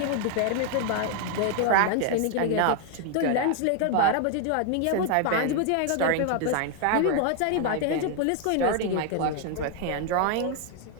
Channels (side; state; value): both; different; correlation 0.00